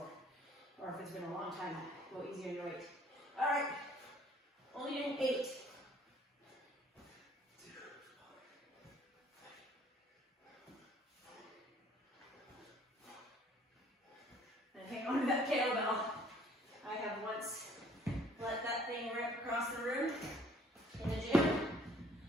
or if it's been a long time. Go easy on your weight. All right, only doing 8. And hang on to that kettlebell. I have once let that thing rip across the room in the gym.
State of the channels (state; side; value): normal; both; correlation 0.58